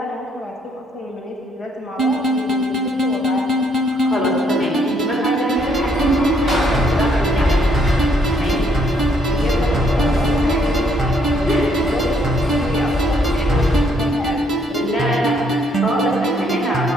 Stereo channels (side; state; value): both; normal; correlation 0.69